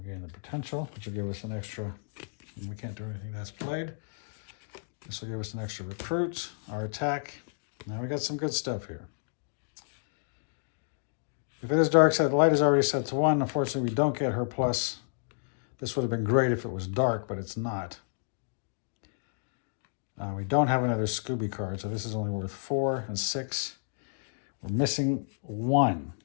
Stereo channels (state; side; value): silent; right; digital silence